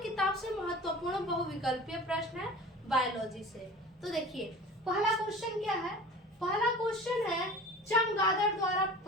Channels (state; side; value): normal; both; correlation 0.39